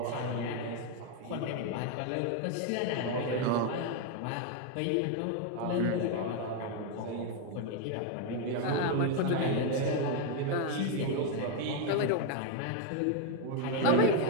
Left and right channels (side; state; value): both; different; correlation 0.01